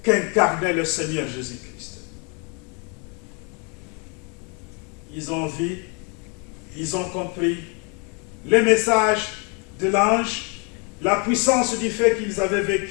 qu'incarnait le Seigneur Jésus-Christ. Ils ont vu, ils ont compris le message de l'ange, la puissance du fait qu'ils avaient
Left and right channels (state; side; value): quieter; right; 34.3 dB